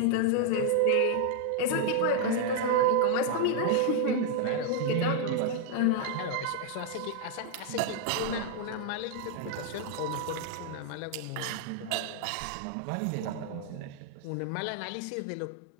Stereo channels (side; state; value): both; different; correlation 0.00